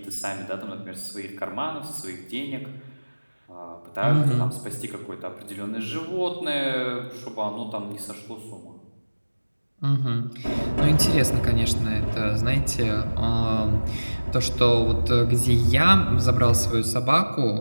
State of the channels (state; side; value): inverted; both; correlation -1.00